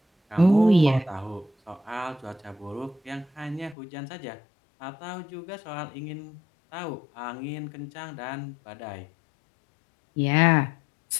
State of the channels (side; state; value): right; drops out; at 3.8 s